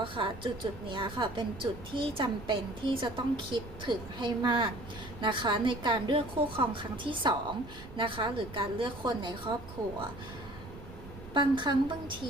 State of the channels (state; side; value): noise; right; rumble, 15 dB below the sound